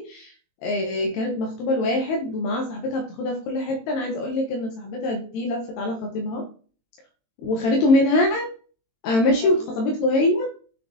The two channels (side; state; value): right; late; 22 ms